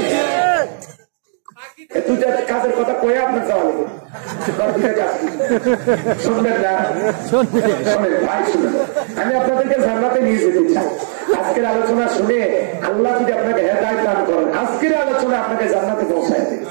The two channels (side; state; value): left; silent; digital silence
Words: 2টা কাজের কথা কয়ে আপনার যাওয়া লাগবে, শুনবেন না? শোনেন ভাই, শুনেন, আমি আপনাদেরকে জান্নাতে নিয়ে যেতে চাই। আজকের আলোচনা শুনে আল্লাহ যদি আপনাকে হেদায়েত দান করেন, আজকের আলোচনা আপনাকে জান্নাতে পৌঁছায় দেবে।